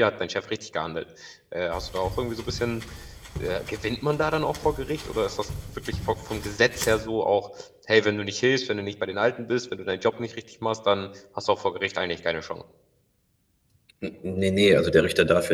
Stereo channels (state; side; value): identical; both; correlation 1.00